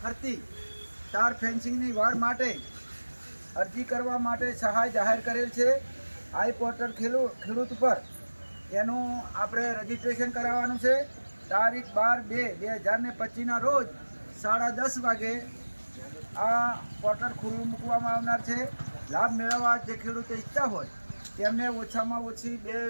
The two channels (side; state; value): both; inverted; correlation -1.00